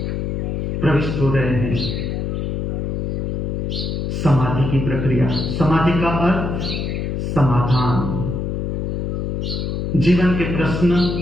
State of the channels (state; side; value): noise; left; hum, 2 dB below the sound